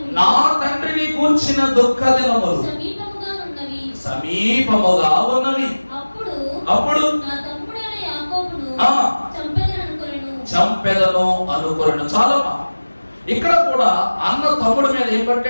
నా తండ్రిని గూర్చిన దుఃఖ దినములు సమీపముగా ఉన్నవి. అప్పుడు చంపెదను అనుకొనెను. చాలా ఇక్కడ కూడా అన్న తమ్ముడి మీద ఏం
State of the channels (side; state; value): both; inverted; correlation -1.00